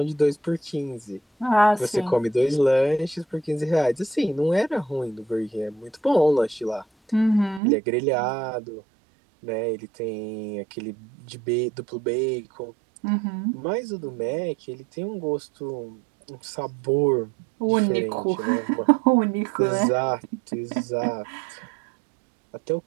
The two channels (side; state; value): left; drops out; at 7.6 s